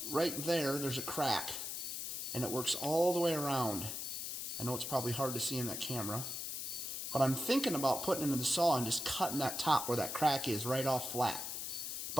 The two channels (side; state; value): left; noise; hiss, 4 dB below the sound